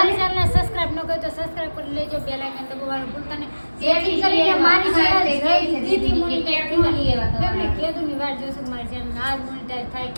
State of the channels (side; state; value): both; inverted; correlation -1.00